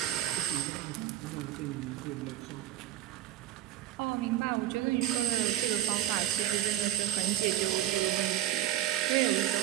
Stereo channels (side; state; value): left; quieter; 12.5 dB